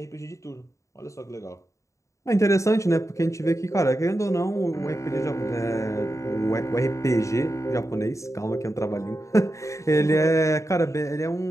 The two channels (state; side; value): late; right; 0.15 ms